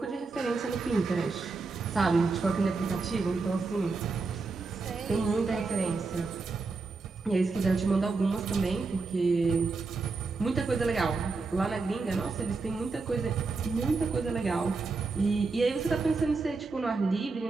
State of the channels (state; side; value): quieter; left; 4.0 dB